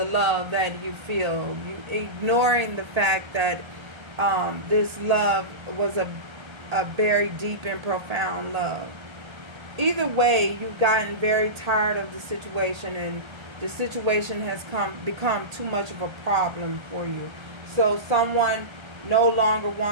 love that you feel. You ignoring the fact that this love was a very deep and profound love. Either way, you've gotten very tired of the situation and the situation has become too much of a problem for you. So someone no longer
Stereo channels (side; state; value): left; late; 1.3 ms